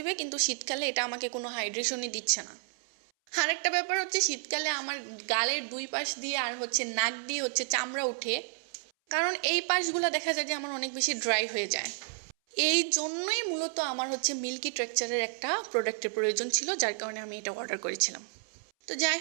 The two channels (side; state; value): left; silent; 57 dB below the other